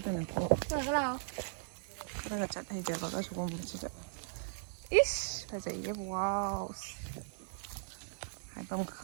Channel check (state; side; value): silent; left; digital silence